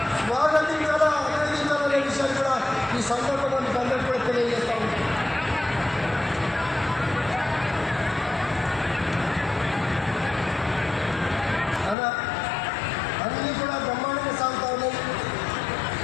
స్వాగతించాలా, అభినందించాలనే విషయాన్ని కూడా ఈ సందర్భంగా మీకు అందరికీ కూడా తెలియజేస్తాము. అలా అన్నీ కూడా బ్రహ్మాండంగా సాగుతా ఉన్నాయి.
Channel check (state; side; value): drops out; right; at 12.0 s